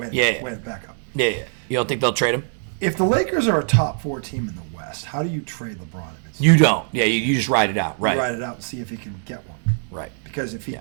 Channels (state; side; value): silent; left; digital silence